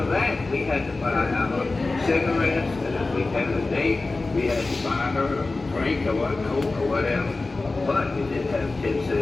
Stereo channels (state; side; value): quieter; right; 3.4 dB